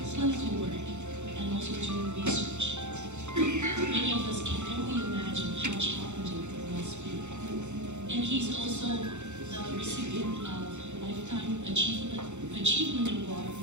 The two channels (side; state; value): left; late; 0.83 ms